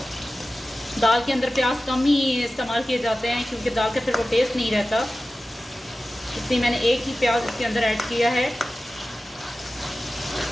दाल के अंदर प्याज कम ही इस्तेमाल किए जाते हैं क्योंकि दाल का फिर वो टेस्ट नहीं रहता, इसलिए मैंने एक ही प्याज इसके अंदर ऐड किया है।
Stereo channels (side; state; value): both; normal; correlation 0.95